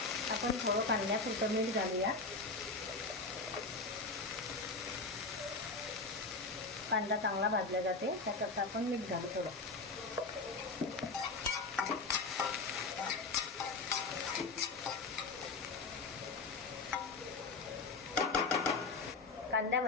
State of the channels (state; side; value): quieter; right; 3.8 dB